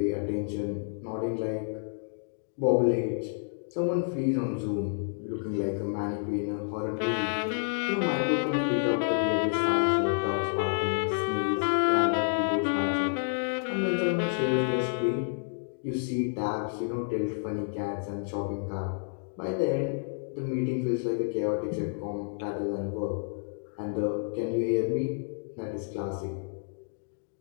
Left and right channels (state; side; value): silent; right; digital silence